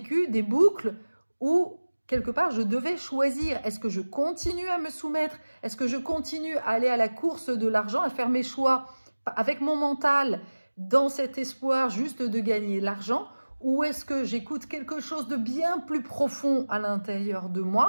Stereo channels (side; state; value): both; inverted; correlation -1.00